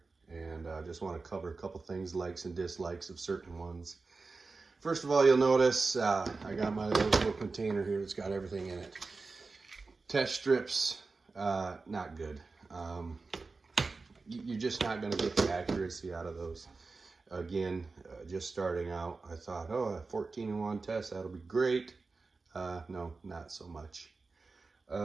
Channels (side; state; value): left; quieter; 4.0 dB